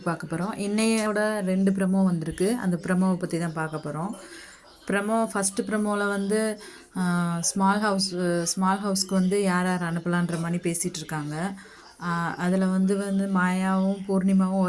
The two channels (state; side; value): identical; both; correlation 1.00